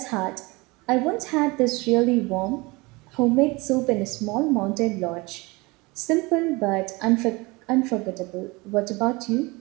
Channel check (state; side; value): quieter; left; 24.4 dB